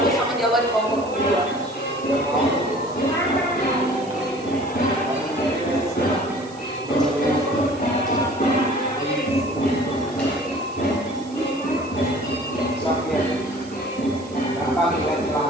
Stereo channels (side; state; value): right; noise; hiss, 22 dB below the sound